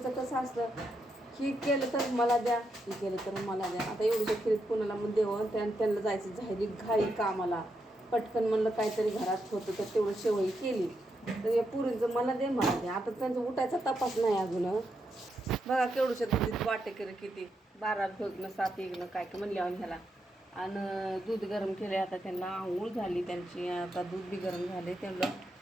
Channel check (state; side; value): normal; both; correlation 0.82